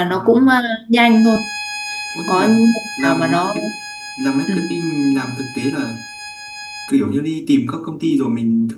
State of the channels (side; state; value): both; identical; correlation 1.00